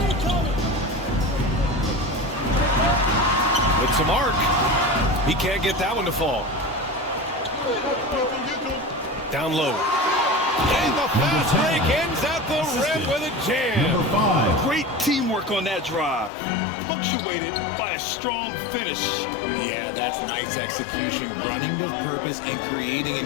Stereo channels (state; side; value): drops out; right; at 16.3 s